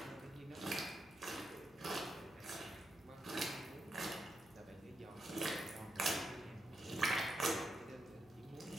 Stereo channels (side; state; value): right; noise; hum, 27 dB below the sound